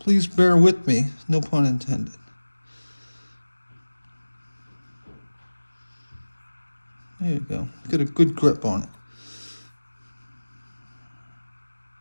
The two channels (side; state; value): both; inverted; correlation -1.00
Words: bear with me, no pun intended. There you go. Get a good grip on it.